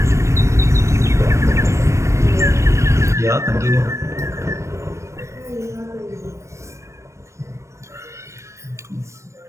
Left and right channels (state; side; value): late; left; 0.14 ms